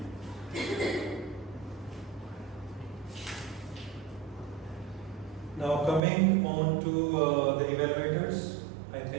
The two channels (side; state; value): left; drops out; at 6.0 s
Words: Now coming on to the evaluators, I